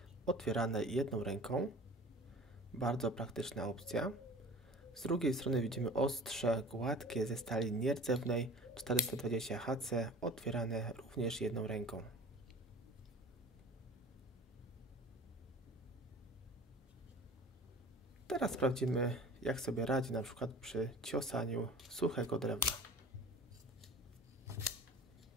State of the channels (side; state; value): both; normal; correlation 0.42